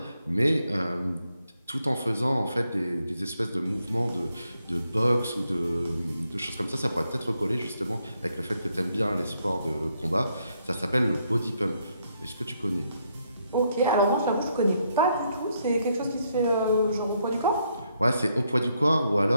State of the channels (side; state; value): both; inverted; correlation -0.75